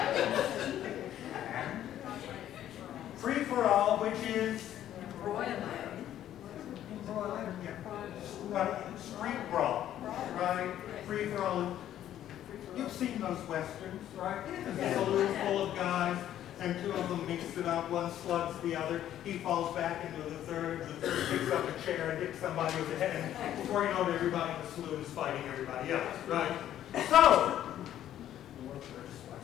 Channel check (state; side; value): quieter; right; 11.6 dB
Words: Free for all, which is street brawl, right? Free for all. You've seen those westerns, right? There's a saloon full of guys, and two of them mix it up. One slugs the other. He falls back into the third. The third picks up a chair and hits somebody with the head. And before you know it, everybody in the saloon is fighting everybody else, right? So, the world's largest